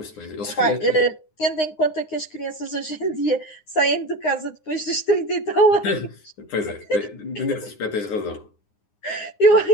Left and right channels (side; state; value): right; late; 9.7 ms